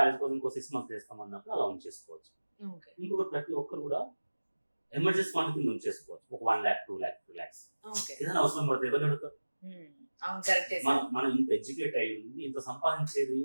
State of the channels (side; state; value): both; inverted; correlation -1.00